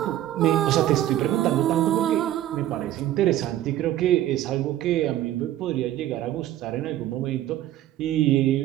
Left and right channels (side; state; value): left; quieter; 13.1 dB